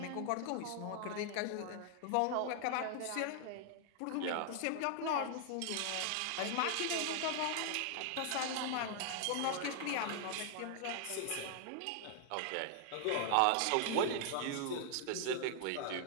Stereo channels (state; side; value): different; both; correlation 0.00